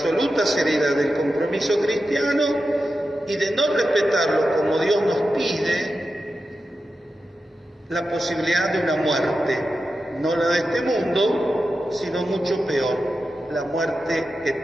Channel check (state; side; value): normal; both; correlation 0.91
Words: seriedad del compromiso cristiano y de no respetarlo como Dios nos pide, la posibilidad de una muerte, no la de este mundo, sino mucho peor, la muerte